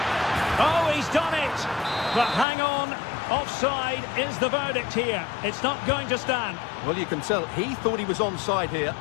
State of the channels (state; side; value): drops out; right; at 2.5 s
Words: Oh, he's done it. But hang on. Offside is the verdict here. It's not going to stand. Well, you can tell he thought he was onside here,